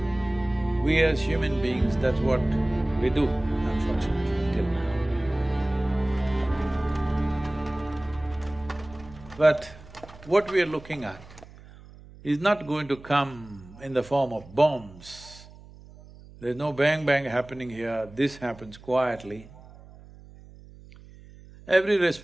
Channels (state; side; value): noise; right; hum, 20 dB below the sound